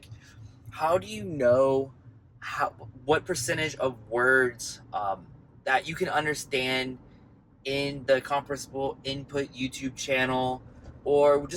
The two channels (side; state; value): both; identical; correlation 1.00